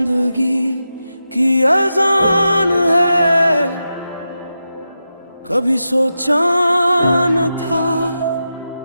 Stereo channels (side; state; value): both; inverted; correlation -0.90